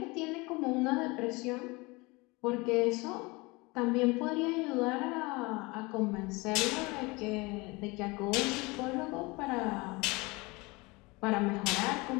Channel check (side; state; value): right; quieter; 24.8 dB